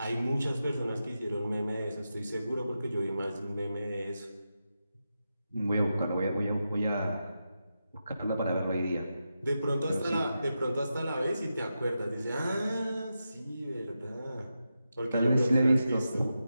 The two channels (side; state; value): both; inverted; correlation -0.89